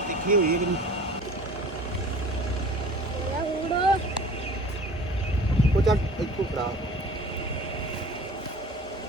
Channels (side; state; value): both; normal; correlation 0.44